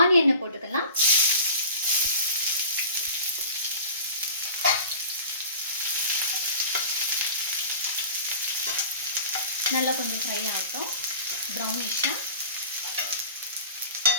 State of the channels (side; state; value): both; inverted; correlation -0.39